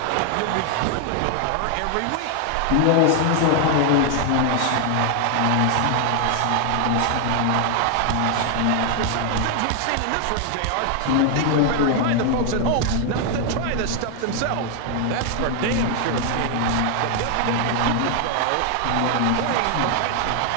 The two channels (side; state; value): both; different; correlation 0.00